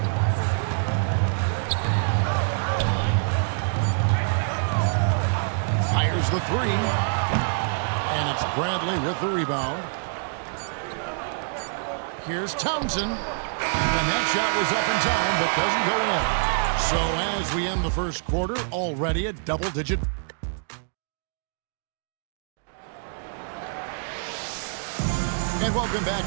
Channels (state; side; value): silent; left; digital silence